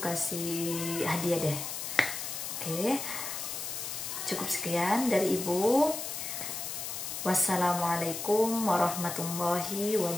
kasih hadiah deh. Oke? Cukup sekian dari Ibu. Wassalamualaikum warahmatullahi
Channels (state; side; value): noise; left; hiss, 5 dB below the sound